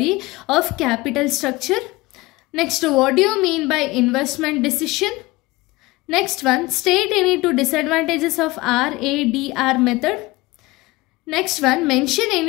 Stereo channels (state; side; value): quieter; right; 21.0 dB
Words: of capital structure. Next what do you mean by investment decision. Next one, state any 2 disadvantages of RADR method. Next one, mention